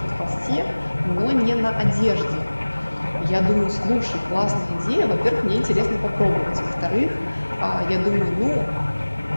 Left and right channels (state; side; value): inverted; both; correlation -1.00